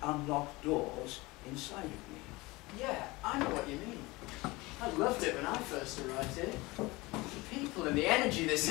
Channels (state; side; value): quieter; right; 22.4 dB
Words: unlocked doors inside of me. Yeah, I know what you mean. I loved it when I first arrived here. The people and the energy this